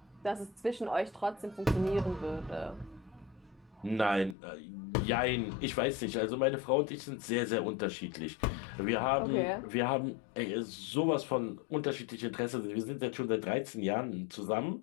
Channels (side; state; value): right; drops out; at 4.4 s